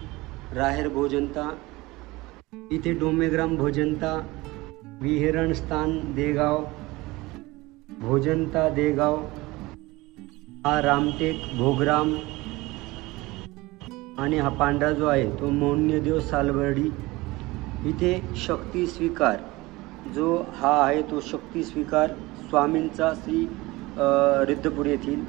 राहेर भोजनता, इथे डोमेग्राम भोजनता, विहरण स्थान देगाव, भोजनता देगाव, हा रामटेक भोगराम, आणि हा पांढरा जो आहे तो मौन्यदेव सालबर्डी। इथे शक्ती स्वीकार जो हा आहे तो शक्ती स्वीकार स्वामींचा श्री रुद्रपूर येथील,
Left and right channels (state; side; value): quieter; left; 21.1 dB